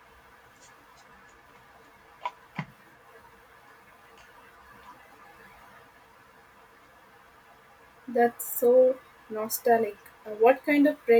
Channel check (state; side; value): identical; both; correlation 1.00